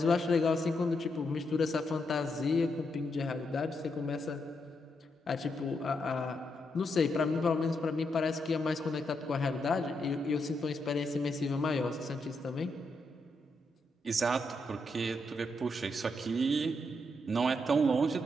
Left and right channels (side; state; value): both; normal; correlation 0.81